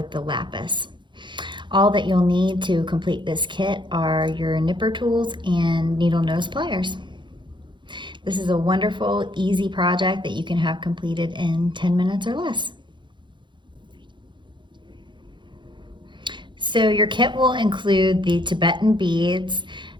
the lapis. All that you'll need to complete this kit are your nipper tools and needle nose pliers. This is a wonderful, easy project that you can have completed in 10 minutes or less. So your kit will include the Tibetan beads,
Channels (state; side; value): late; left; 0.23 ms